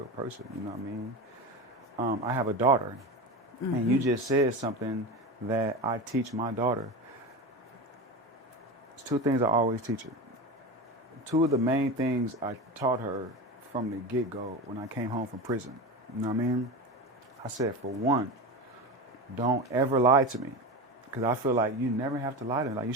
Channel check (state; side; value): normal; both; correlation 0.24